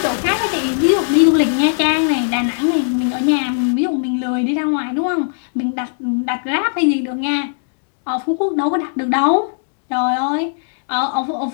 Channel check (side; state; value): right; silent; digital silence